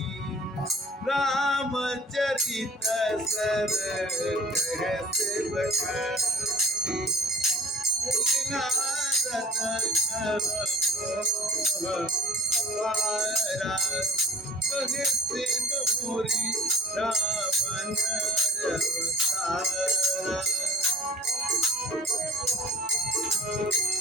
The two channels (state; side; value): normal; both; correlation 0.45